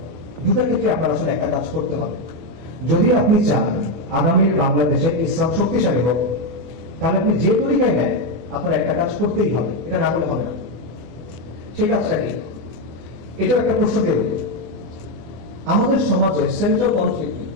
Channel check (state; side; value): late; left; 25 ms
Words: দুটার ক্ষেত্রে আপনার আসলে একটা কাজ করতে হবে। যদি আপনি চান আগামীর বাংলাদেশে ইসলাম শক্তিশালী হোক, তাহলে আপনি যে তরিকায় নেন, আপনার একটা কাজ করতেই হবে, এটা না করলে হবে না। সেই কাজটা কি? এটাও একটা প্রশ্ন দিয়ে বলি, আমাদের সমাজে সেন্ট্রাল কনফ্লিক্ট কি?